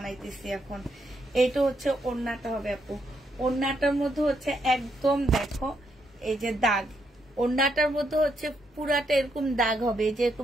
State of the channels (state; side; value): normal; both; correlation 0.78